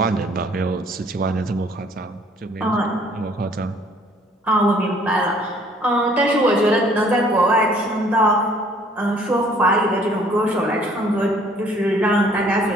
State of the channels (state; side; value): normal; both; correlation 0.58